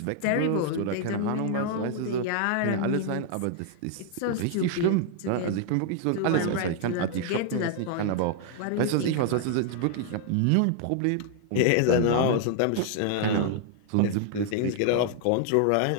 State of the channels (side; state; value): both; different; correlation 0.00